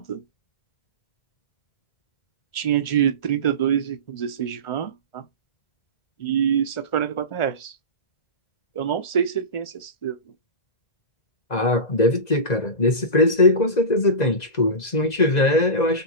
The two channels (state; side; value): late; right; 2.0 ms